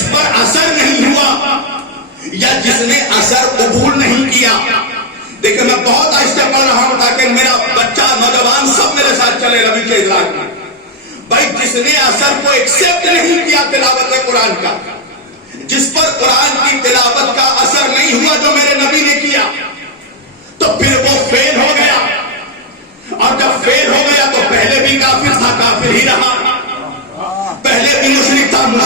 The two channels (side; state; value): both; normal; correlation 0.03